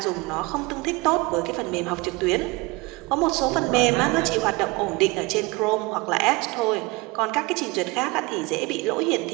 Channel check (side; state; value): left; quieter; 24.7 dB